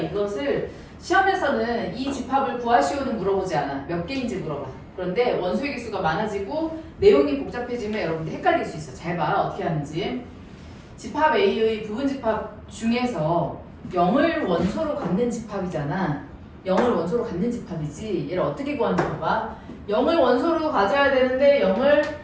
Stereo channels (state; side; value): identical; both; correlation 1.00